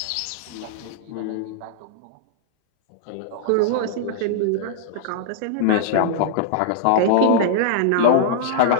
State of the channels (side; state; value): both; different; correlation -0.01